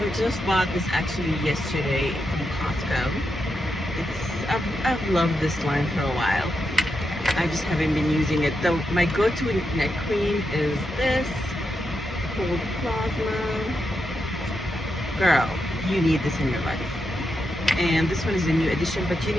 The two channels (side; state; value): both; normal; correlation 0.85